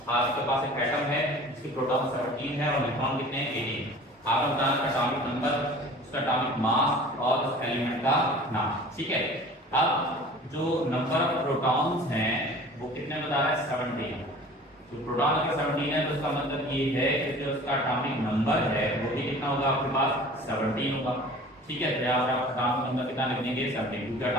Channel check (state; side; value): normal; both; correlation 0.44